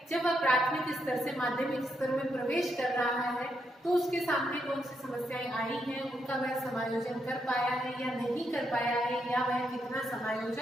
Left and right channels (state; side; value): normal; both; correlation 0.80